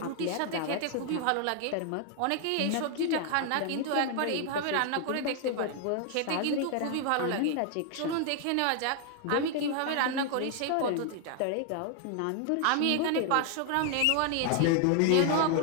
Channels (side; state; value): both; different; correlation 0.00